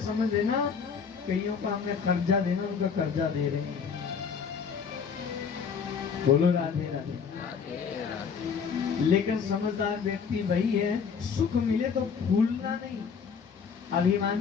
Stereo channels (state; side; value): quieter; right; 6.2 dB